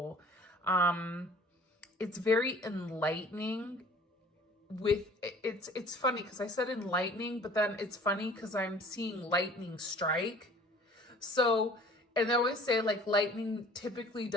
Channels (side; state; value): both; normal; correlation 0.50